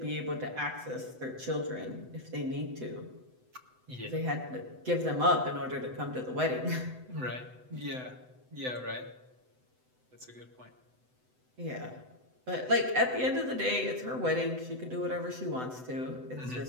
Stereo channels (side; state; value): left; late; 7.9 ms